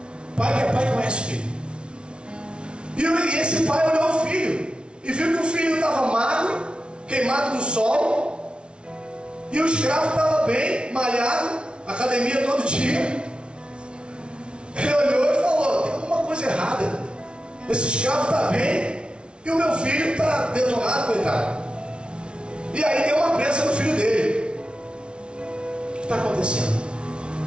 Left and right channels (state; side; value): late; left; 0.057 ms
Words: Pai que é pai conhece o filho. E esse pai olhou o filho e viu que o filho estava magro, queimado do sol, e o escravo estava bem, malhado, academia todo dia. Ele olhou e falou: tem alguma coisa errada. Esse escravo está bem e o meu filho está detonado, coitado. E aí deu uma pressa no filho dele. O que está acontecendo?